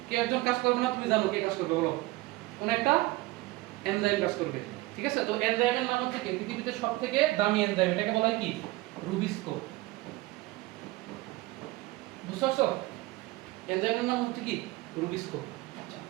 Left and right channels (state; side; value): quieter; left; 20.0 dB